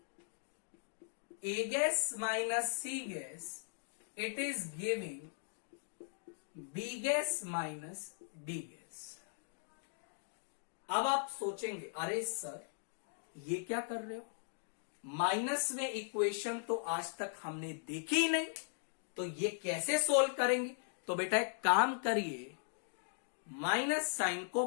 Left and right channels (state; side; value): silent; right; digital silence